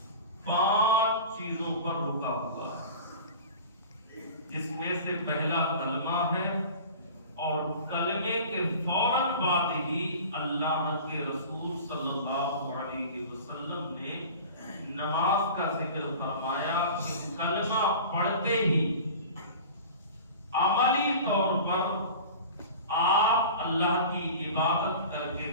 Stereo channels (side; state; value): both; inverted; correlation -0.38